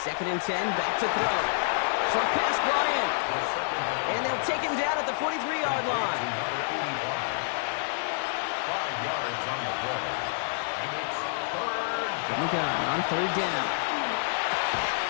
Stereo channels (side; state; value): right; silent; digital silence